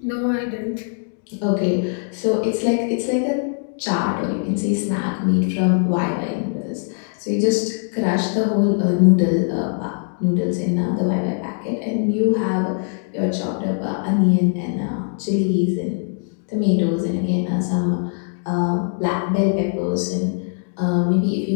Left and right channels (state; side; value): silent; right; 59 dB below the other